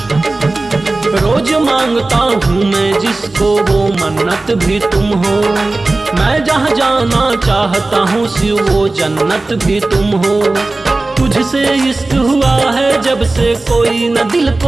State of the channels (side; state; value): left; quieter; 3.2 dB